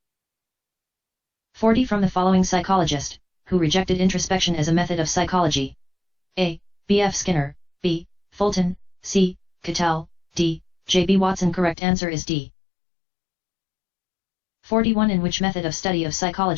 40. From the following psychologist, who rejected introspection as a method of psychology? A. B.F. Skinner, B. Fulton, C. Cattell, D. J.B. Watson. Correct answer is D. 41. In which method of study of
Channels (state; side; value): drops out; right; at 11.8 s